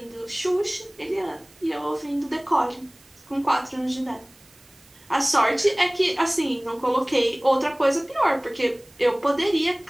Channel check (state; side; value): noise; right; hiss, 28 dB below the sound